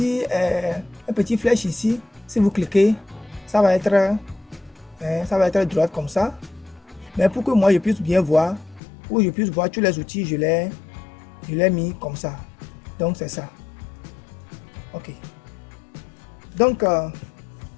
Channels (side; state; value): right; drops out; at 8.8 s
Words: petit flèche ici. Si vous cliquez, ça va être droite comme ça. Mais pour que moi je puisse bien voir, pour que je puisse voir tous les outils, je l'ai mis comme ça. Donc c'est ça. Ok. Donc